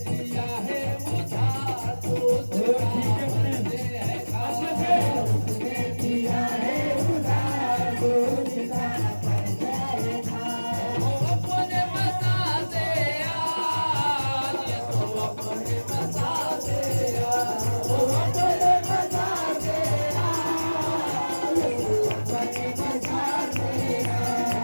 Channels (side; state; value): both; inverted; correlation -1.00